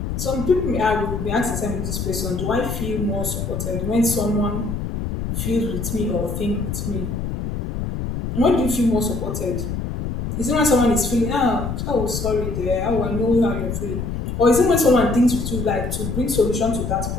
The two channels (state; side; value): noise; left; rumble, 4 dB below the sound